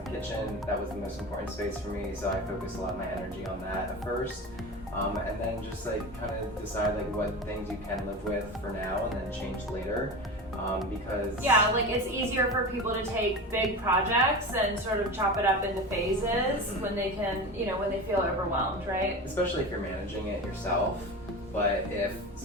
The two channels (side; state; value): both; normal; correlation 0.28